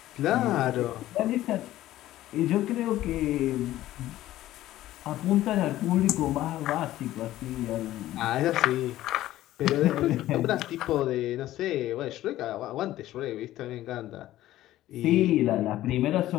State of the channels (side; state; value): right; quieter; 14.6 dB